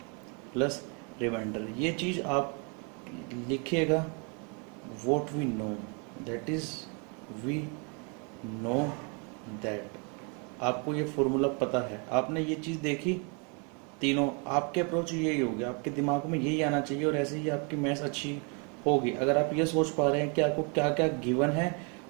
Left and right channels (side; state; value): left; quieter; 35.2 dB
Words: plus remainder. ये चीज़ आप लिखिएगा, what we know, that is we know that. आपको ये फॉर्मूला पता है, आपने ये चीज़ देखी, तीनों आपके अप्रोच यही होगी, आपके दिमाग में यही आना चाहिए और ऐसे ही आपकी मैथ्स अच्छी होगी। अगर आप ये सोच पा रहे हैं कि आपको क्या क्या गिवन है